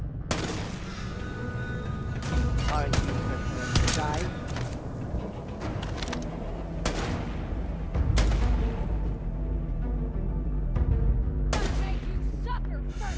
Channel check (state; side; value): identical; both; correlation 1.00